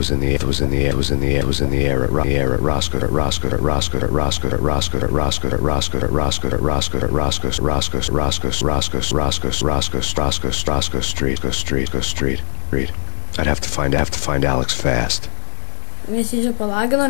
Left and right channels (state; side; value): silent; right; digital silence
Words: Street. I'd have to find Alex fast. Visi čia palagino,